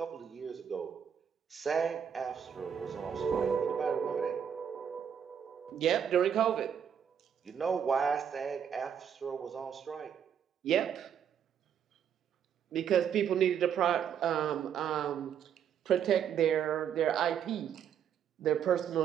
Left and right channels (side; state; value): left; quieter; 8.3 dB